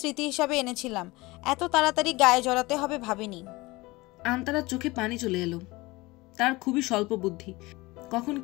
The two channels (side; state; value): right; quieter; 21.8 dB